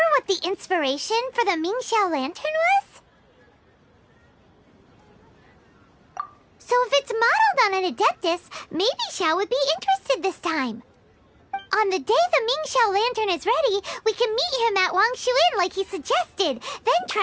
what the inspiration for the Mingxiao lantern was? So if it's modeled on an Adeptus, maybe Xiao would be interested this time. On the day the Mingxiao lantern is ready, we can meet him at Wangshuin like he suggested, then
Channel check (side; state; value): both; identical; correlation 1.00